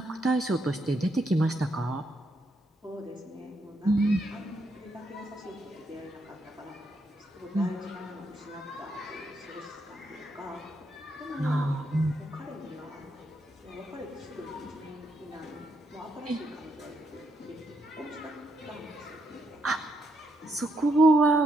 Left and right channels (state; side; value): normal; both; correlation 0.77